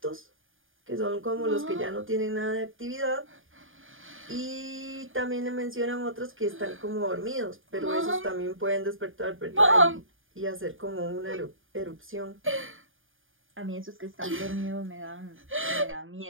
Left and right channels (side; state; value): left; late; 0.59 ms